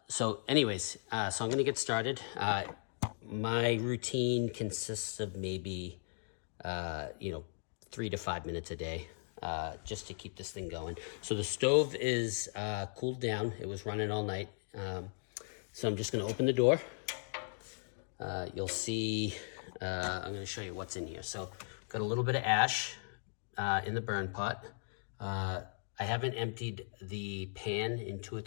So anyways, so I'm going to get started. My routine consists of maybe, 3 to 5 minutes a day. Just to keep this thing going. So the stove is cooled down. It was running all night. So I'm just going to open the door. You'll see, I'm going to show you what's in here. So got a little bit of ash in the burn pot. I haven't emptied the pan in 2 or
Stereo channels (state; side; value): silent; right; digital silence